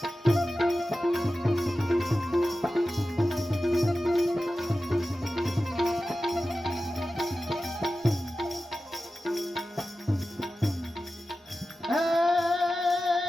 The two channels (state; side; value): normal; both; correlation 0.94